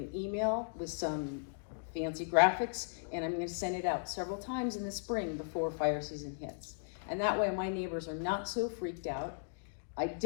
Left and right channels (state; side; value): silent; right; digital silence